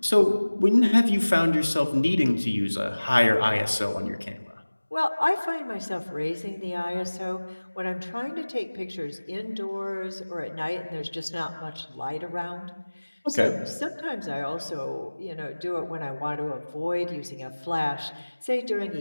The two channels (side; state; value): both; inverted; correlation -1.00